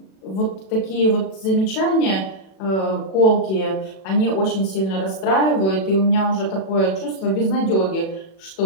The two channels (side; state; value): right; late; 37 ms